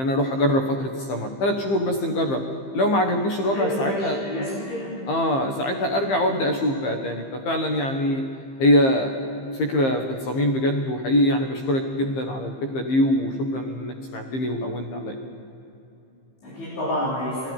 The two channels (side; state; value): right; late; 15 ms